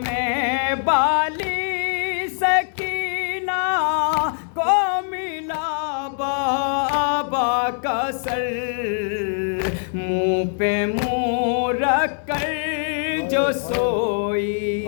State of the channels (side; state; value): right; silent; digital silence